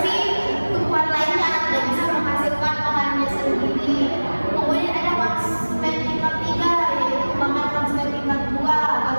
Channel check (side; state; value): both; inverted; correlation -1.00